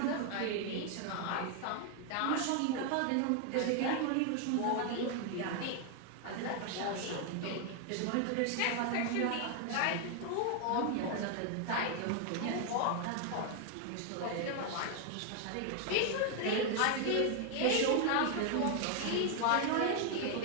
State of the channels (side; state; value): both; different; correlation 0.00